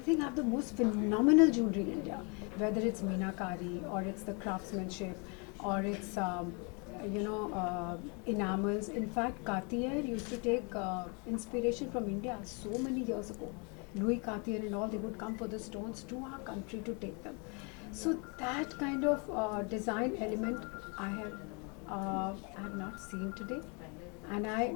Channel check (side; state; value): right; quieter; 33.5 dB